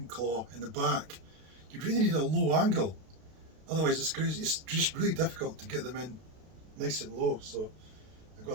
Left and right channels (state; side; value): late; left; 32 ms